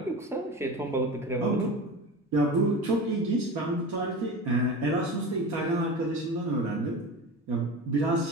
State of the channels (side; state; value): both; normal; correlation 0.30